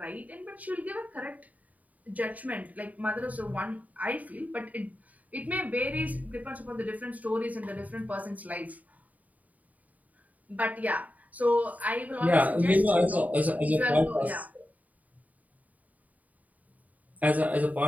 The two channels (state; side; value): late; left; 0.073 ms